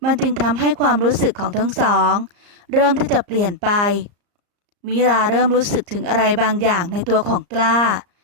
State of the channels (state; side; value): late; left; 34 ms